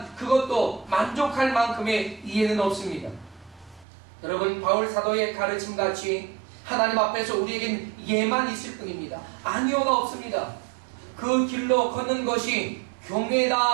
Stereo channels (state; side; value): drops out; left; at 3.9 s